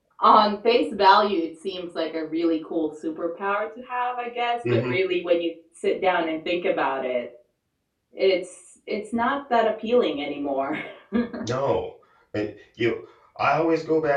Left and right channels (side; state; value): both; identical; correlation 1.00